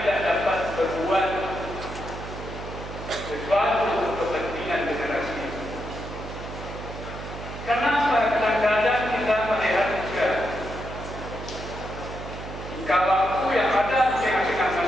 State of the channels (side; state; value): right; noise; hum, 10 dB below the sound